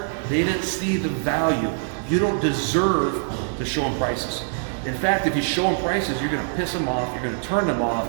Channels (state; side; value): silent; left; digital silence